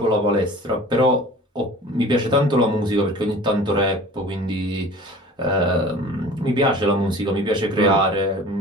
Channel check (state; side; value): normal; both; correlation 0.43